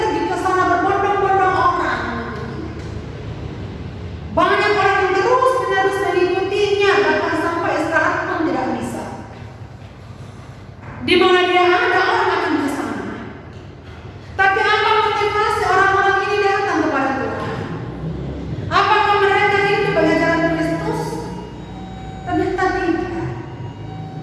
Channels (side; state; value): both; identical; correlation 1.00